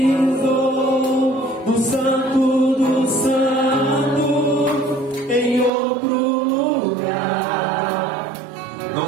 no santo do santo em outro lugar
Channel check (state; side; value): drops out; left; at 5.7 s